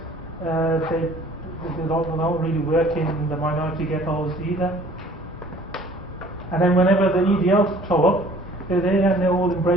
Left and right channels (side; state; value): both; normal; correlation 0.53